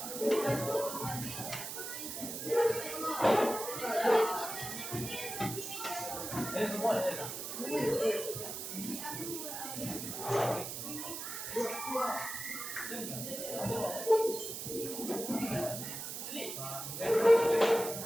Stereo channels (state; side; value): noise; right; hiss, 6 dB below the sound